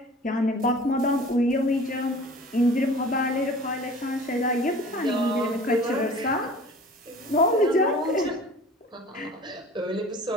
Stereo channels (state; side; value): normal; both; correlation 0.44